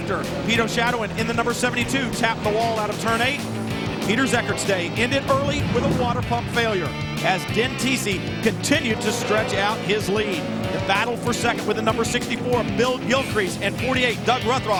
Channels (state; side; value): identical; both; correlation 1.00